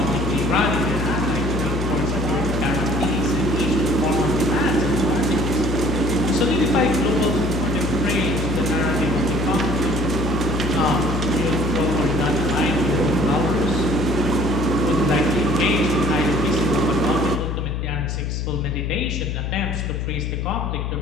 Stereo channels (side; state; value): left; noise; hum, 2 dB below the sound